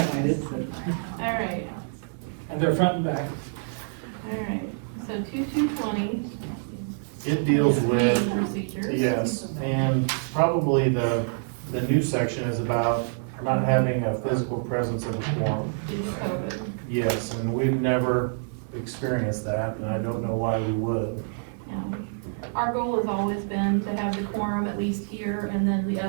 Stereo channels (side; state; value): left; silent; digital silence